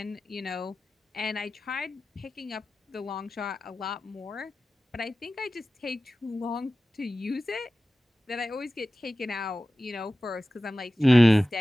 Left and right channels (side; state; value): both; normal; correlation 0.95